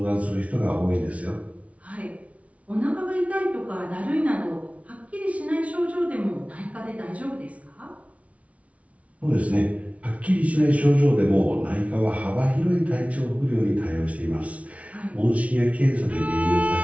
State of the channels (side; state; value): left; late; 0.065 ms